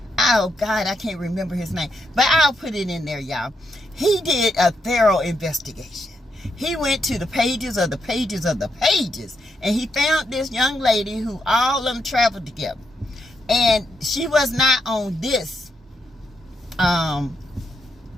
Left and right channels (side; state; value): both; normal; correlation 0.80